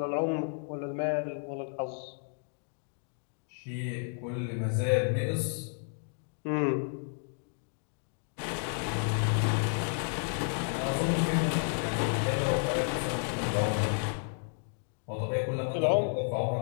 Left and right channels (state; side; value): silent; right; 56 dB below the other